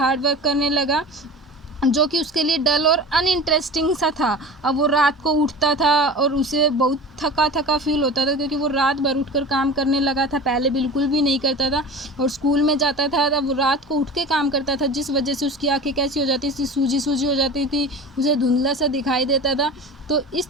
वर्क करने लगा, जो कि उसके लिए डल और अनइंटरेस्टिंग सा था। अब वो रात को उठता था और उसे बहुत थका थका फील होता था, क्योंकि वो रात भर उठकर काम करने लगा था, पहले बिल्कुल भी नहीं करता था। और स्कूल में जाता था तब वो रात को उठ के काम करता था, जिस वजह से उसकी आंखें कैसी हो जाती थी, सूजी सूजी हो जाती थी, उसे धुंधला सा दिखाई देता था। तो इस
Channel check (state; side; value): normal; both; correlation 0.34